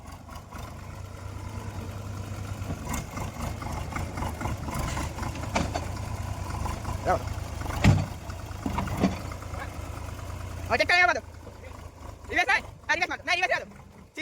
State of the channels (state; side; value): identical; both; correlation 1.00